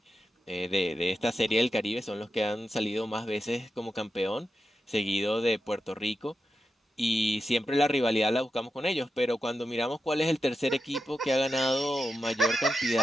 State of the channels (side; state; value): both; normal; correlation 0.88